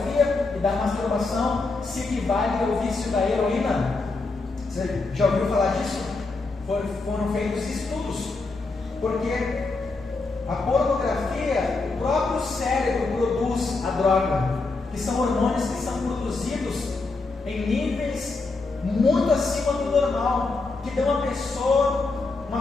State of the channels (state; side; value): quieter; right; 3.7 dB